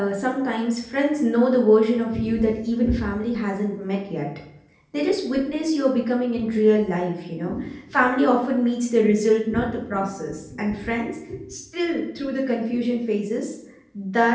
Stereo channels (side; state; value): both; identical; correlation 1.00